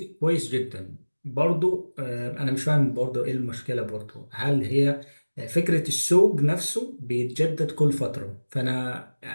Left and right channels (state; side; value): inverted; both; correlation -1.00